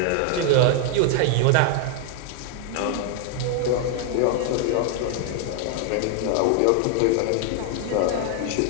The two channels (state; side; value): different; both; correlation 0.00